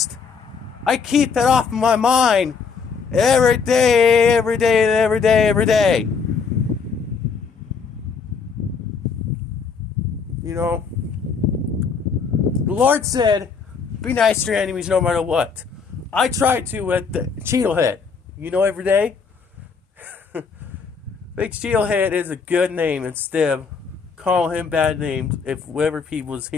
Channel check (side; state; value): right; quieter; 5.5 dB